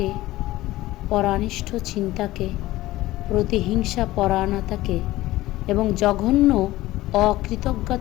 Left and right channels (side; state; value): right; quieter; 17.0 dB